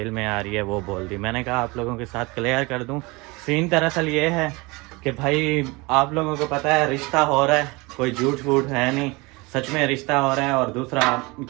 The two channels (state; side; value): quieter; left; 25.0 dB